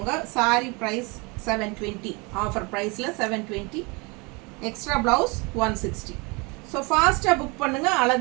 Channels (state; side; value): quieter; left; 28.3 dB